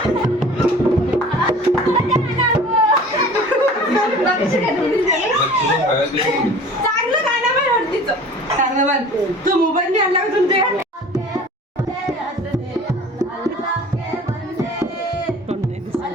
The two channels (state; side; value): normal; both; correlation 0.44